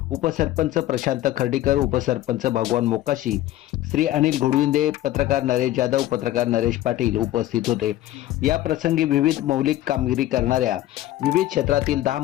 उपसरपंच प्रशांत खर्डीकर, उपसरपंच भगवान मोकाशी, श्री अनिल घोडविंदे, पत्रकार नरेश जाधव, पत्रकार नरेश पाटील उपस्थित होते. या प्रसंगी विविध मौलिक कामगिरी करणाऱ्या विविध क्षेत्रातील 10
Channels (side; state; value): right; quieter; 14.7 dB